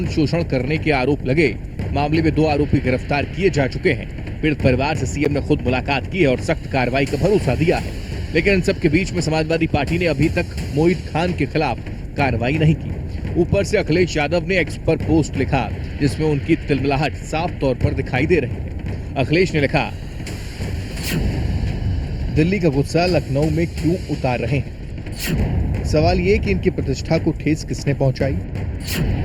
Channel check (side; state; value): both; identical; correlation 1.00